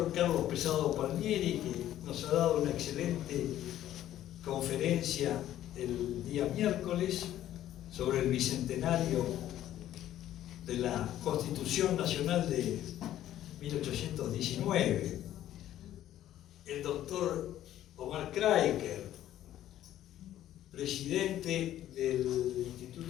Carlos Pesado Palmieri, que nos ha dado una excelente conferencia el día miércoles sobre el bicentenario de la Constitución Nacional de 1819. El doctor Omar Kraiker, presidente del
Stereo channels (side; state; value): right; quieter; 12.5 dB